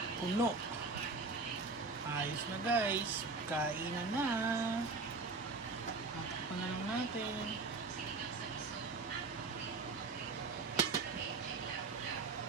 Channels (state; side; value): quieter; left; 3.9 dB